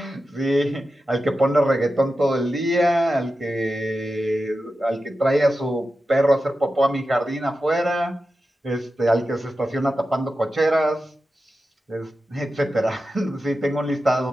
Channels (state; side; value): normal; both; correlation 0.92